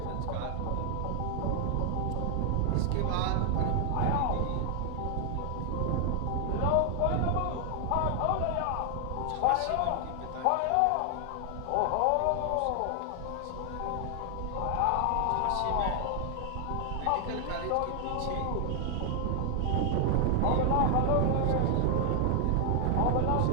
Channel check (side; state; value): both; different; correlation 0.00